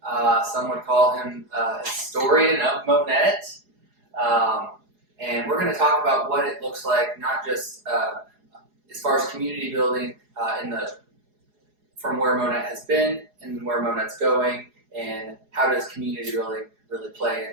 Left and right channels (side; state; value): left; late; 4.8 ms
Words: Some would call him a historian of Monett. And we're going to talk about what it looks like, not just as far as community building from where Monett has been and where Monett's going, and how does community building really play